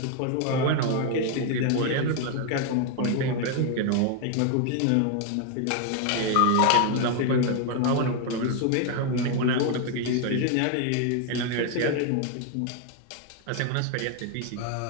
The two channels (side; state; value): both; different; correlation 0.01